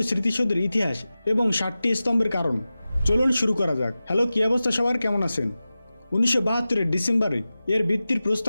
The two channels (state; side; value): inverted; both; correlation -0.95